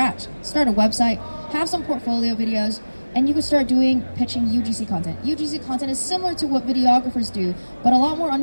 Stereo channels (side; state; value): both; inverted; correlation -1.00